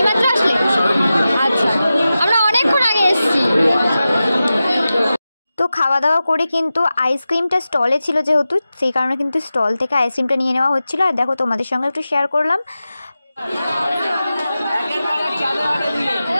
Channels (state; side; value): inverted; both; correlation -0.93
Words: আসলে? আচ্ছা, আমরা অনেকক্ষণ আগে এসেছি। তো খাওয়া দাওয়া করে কিন্তু আইসক্রিমটা স্টলে ছিল, যেহেতু সেই কারণে কিন্তু স্টল থেকে আইসক্রিমটা নিয়ে নেওয়া হচ্ছিলো। আর দেখো তোমাদের সঙ্গে একটু শেয়ার করলাম।